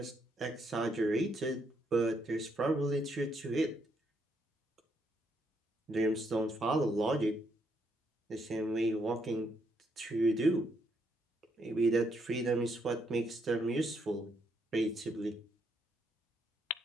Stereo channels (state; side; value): normal; both; correlation 0.75